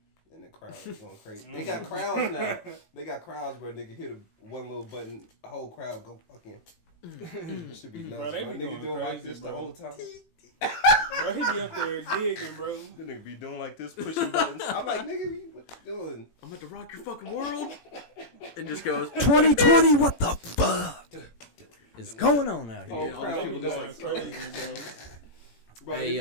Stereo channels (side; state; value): right; late; 18 ms